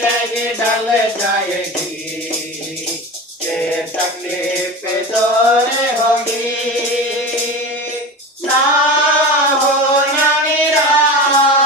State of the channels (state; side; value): normal; both; correlation 0.29